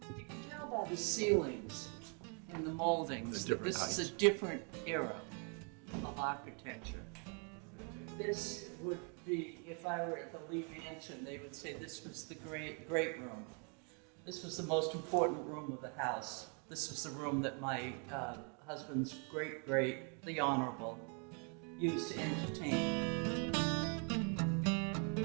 You can tell by the ceilings and the moldings The that this different is a different era of architecture. This would be, if I were at the Lee Mansion, they would say this was the great room. This was the most important room of the house. This was the room that my husband's great, the Honorable, used to entertain.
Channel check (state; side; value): quieter; left; 38.4 dB